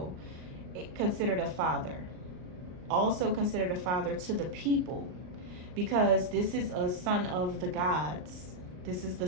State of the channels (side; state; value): left; late; 39 ms